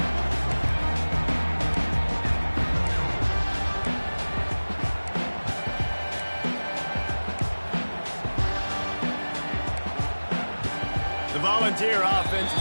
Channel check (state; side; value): inverted; both; correlation -1.00